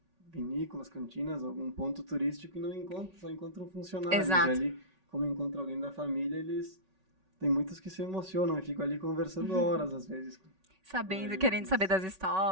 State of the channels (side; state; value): left; late; 5.3 ms